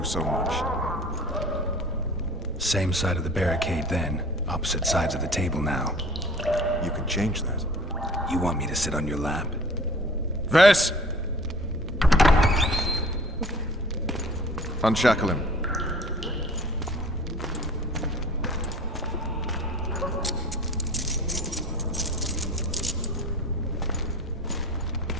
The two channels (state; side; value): normal; both; correlation 0.46